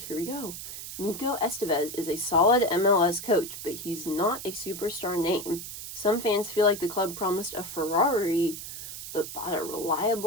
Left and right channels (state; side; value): noise; right; hiss, 9 dB below the sound